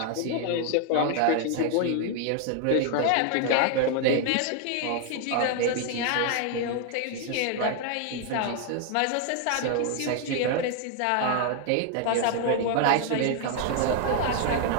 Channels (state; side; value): different; both; correlation 0.00